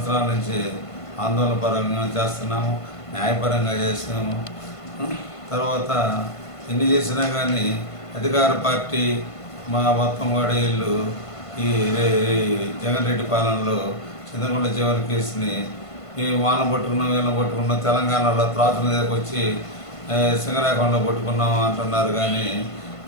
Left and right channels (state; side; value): late; right; 1.5 ms